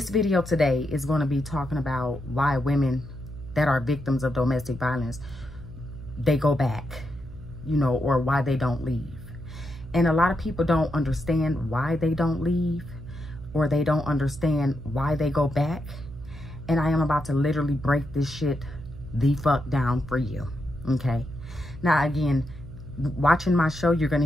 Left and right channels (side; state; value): right; noise; hum, 14 dB below the sound